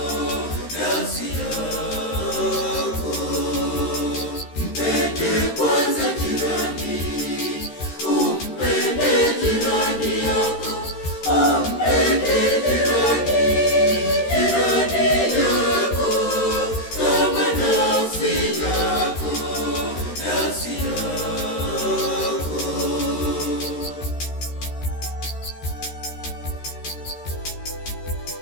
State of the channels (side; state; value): right; late; 13 ms